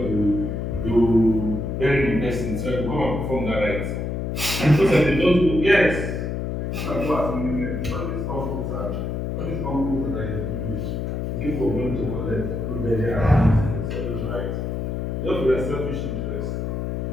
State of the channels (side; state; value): left; noise; hum, 2 dB below the sound